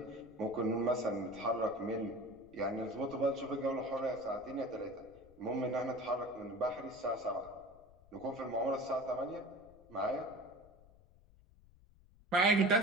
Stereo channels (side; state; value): left; noise; rumble, 25 dB below the sound